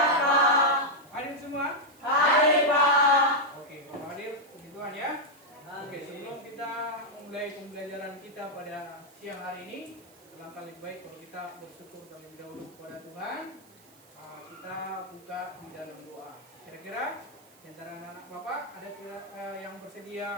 Pak. Hadir semua? Hadir, Pak. Oke, kalau hadir, puji Tuhan ya. Oke, sebelum kita memulai pembelajaran kita pada siang hari ini, alangkah lebih baik kalau kita bersyukur terlebih dahulu kepada Tuhan. Kita buka di dalam doa. Kira-kira di antara anak-anak Bapak ada yang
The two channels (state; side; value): noise; right; hiss, 26 dB below the sound